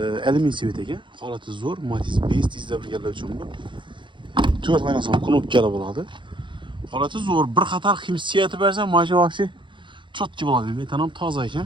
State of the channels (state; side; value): late; left; 0.23 ms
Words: alyumin sveta ekan. Holati zo'r, Matiz 5 tizda birgalar uchun bu. 4 oynasan knopkali bo'ladi. Holati zo'r, bir qator hissiyati bersa, mashina vaqti chotki bo'ladi. Metan ham toza